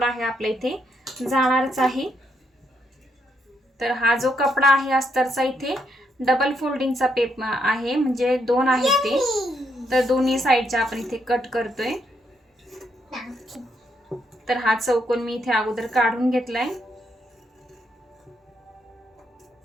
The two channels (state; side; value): normal; both; correlation 0.76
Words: आहे आपल्या इथे जाणारच आहे. तर हा जो कपडा आहे अस्तरचा इथे डबल फोल्डिंगचा पेप आहे, म्हणजे 2 आहेत ते. तर दोन्ही साईडच्या आपण इथे कट करतोय. तर हा चौकोन मी इथे अगोदर काढून घेतलाय.